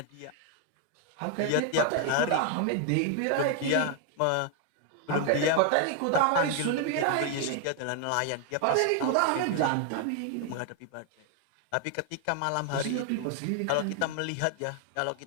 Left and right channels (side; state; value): both; different; correlation 0.00